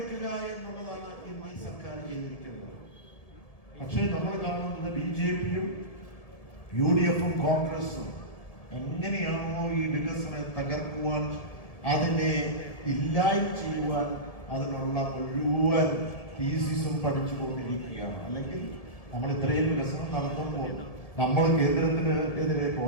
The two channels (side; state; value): right; late; 1.7 ms